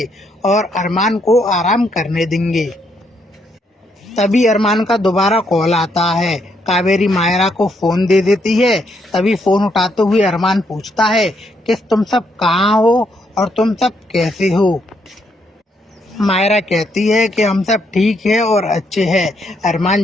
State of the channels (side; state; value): both; normal; correlation 0.75